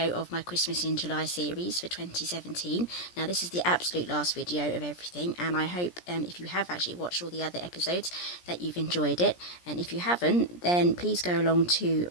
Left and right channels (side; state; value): right; late; 17 ms